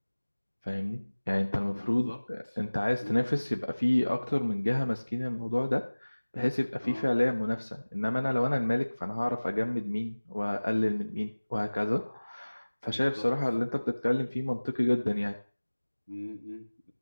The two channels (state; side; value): inverted; both; correlation -1.00